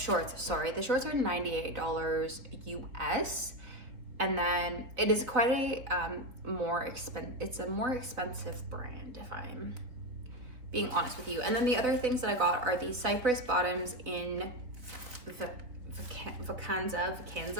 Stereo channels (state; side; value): late; left; 3.8 ms